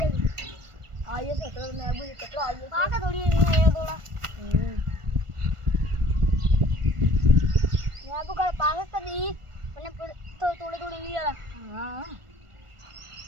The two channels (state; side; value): late; left; 1.4 ms